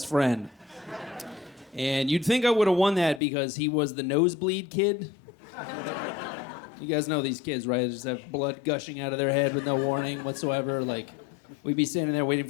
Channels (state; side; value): drops out; right; at 3.2 s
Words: friend. And you'd think I would have won that because he was the nosebleed kid. You guys know these kids, right? They just have blood gushing out of their head with no warning whatsoever. Like, we'd be standing there waiting